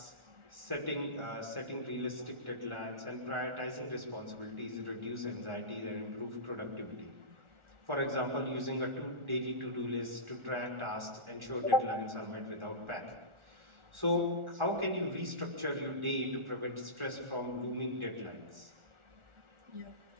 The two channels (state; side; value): late; left; 1.4 ms